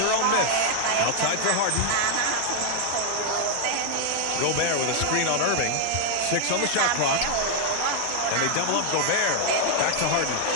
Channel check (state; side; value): different; both; correlation 0.00